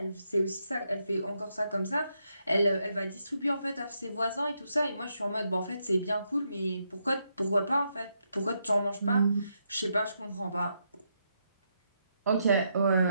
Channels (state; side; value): inverted; both; correlation -0.80